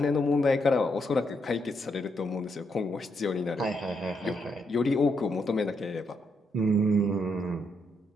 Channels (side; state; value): both; normal; correlation 0.78